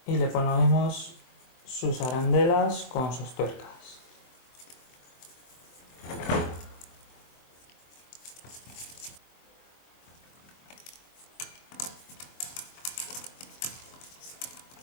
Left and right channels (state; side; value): late; right; 23 ms